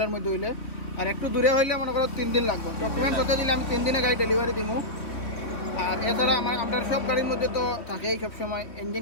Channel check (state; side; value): late; right; 3.1 ms